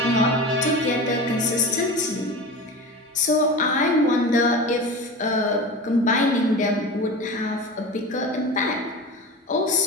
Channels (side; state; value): both; normal; correlation 0.30